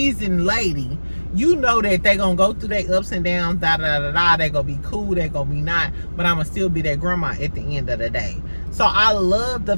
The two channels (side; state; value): both; inverted; correlation -1.00